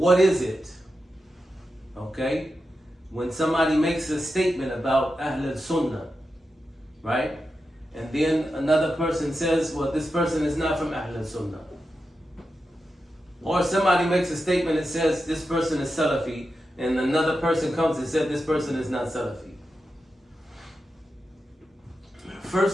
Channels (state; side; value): normal; both; correlation 0.89